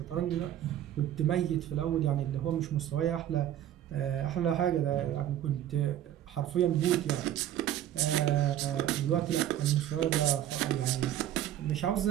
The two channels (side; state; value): left; quieter; 11.7 dB